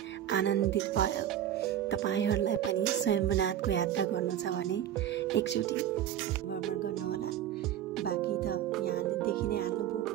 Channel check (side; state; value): left; quieter; 11.1 dB